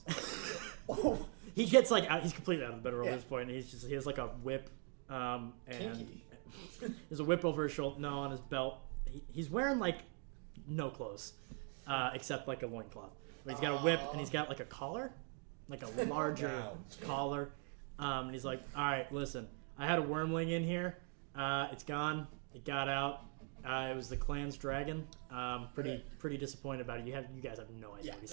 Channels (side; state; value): left; quieter; 39.9 dB